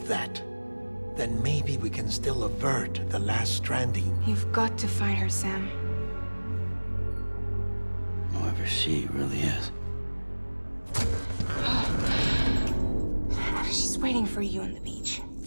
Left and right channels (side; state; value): both; inverted; correlation -1.00